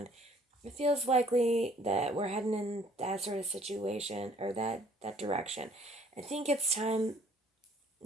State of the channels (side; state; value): both; normal; correlation 0.59